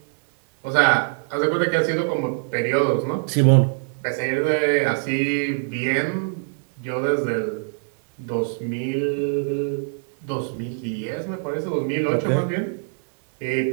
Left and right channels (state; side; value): silent; left; 63 dB below the other